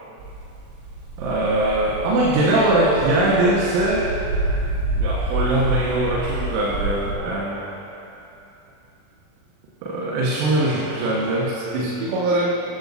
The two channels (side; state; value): left; late; 40 ms